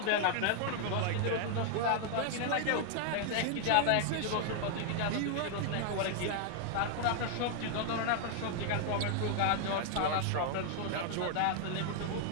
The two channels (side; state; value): both; different; correlation 0.00